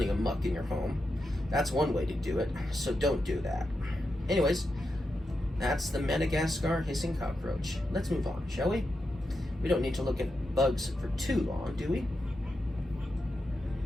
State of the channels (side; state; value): both; normal; correlation 0.87